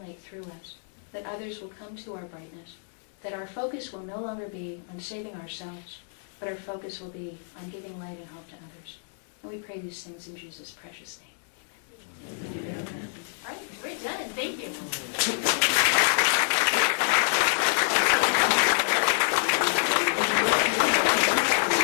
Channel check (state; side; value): silent; right; digital silence